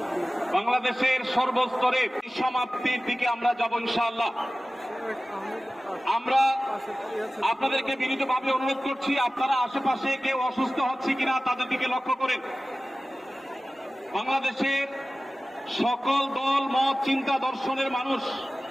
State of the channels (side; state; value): both; normal; correlation 0.96